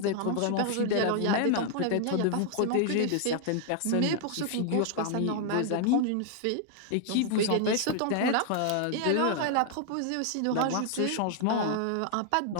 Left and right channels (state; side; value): different; both; correlation 0.00